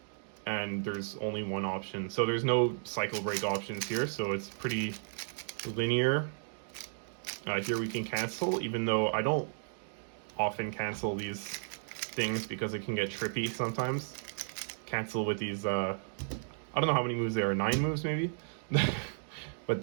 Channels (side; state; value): left; silent; digital silence